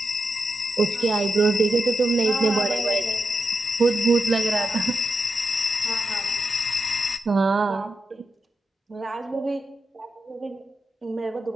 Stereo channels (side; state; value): both; normal; correlation 0.87